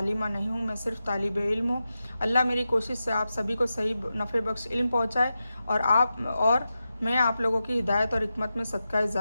नहीं हूँ, मैं सिर्फ तालिब इल्म हूँ। अल्लाह मेरी कोशिश से आप सभी को सही नफ़े बख्श इल्म पहुँचाए और मैं आप लोगों की हिदायत और हिकमत में सदका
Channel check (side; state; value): both; inverted; correlation -0.91